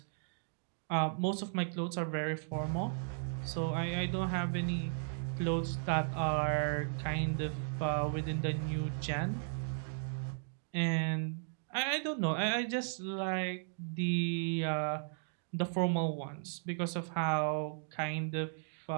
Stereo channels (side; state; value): left; silent; digital silence